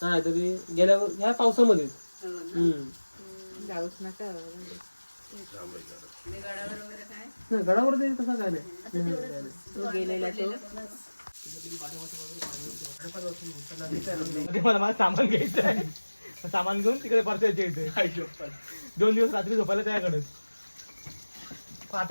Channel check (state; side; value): inverted; both; correlation -1.00